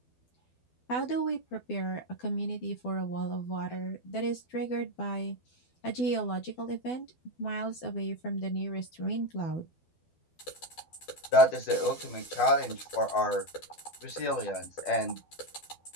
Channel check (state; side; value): late; right; 12 ms